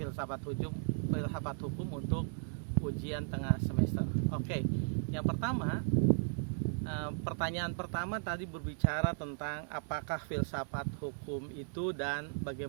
hukum untuk ujian tengah semester. Oke, yang pertama, pertanyaan pertama tadi berbicara tentang apakah filsafat hukum itu dan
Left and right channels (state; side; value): silent; left; digital silence